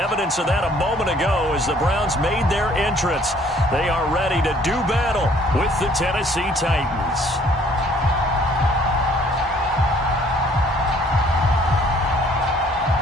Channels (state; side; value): normal; both; correlation 0.59